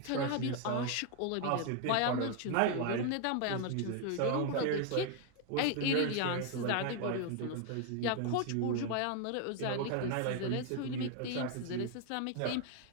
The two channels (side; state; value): both; different; correlation 0.00